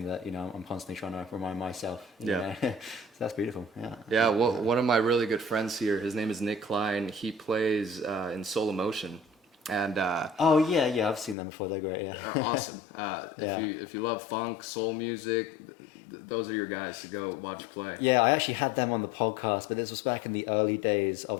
that I'm constantly trying to remind myself. So that's beautiful. Yeah. Well, one of my really good friends here, his name is Nick Klein. He plays in Soul Emotion, and I've seen them before. They're great. Yeah, they're awesome. If you love funk, soul music, those are your guys to go watch play. Yeah, I actually had them on the podcast, but this was back in the early days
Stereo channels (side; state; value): right; drops out; at 11.4 s